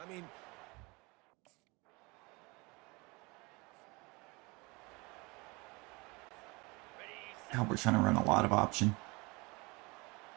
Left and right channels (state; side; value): quieter; left; 26.3 dB